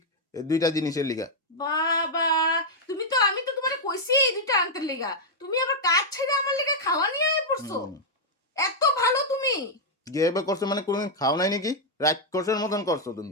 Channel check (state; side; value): normal; both; correlation -0.04